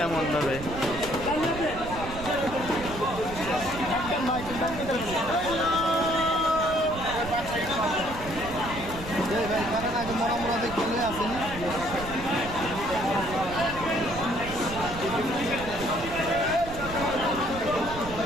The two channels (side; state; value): right; noise; rumble, 11 dB below the sound